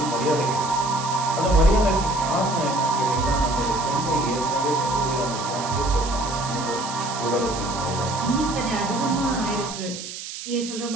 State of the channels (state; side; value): noise; right; hiss, 9 dB below the sound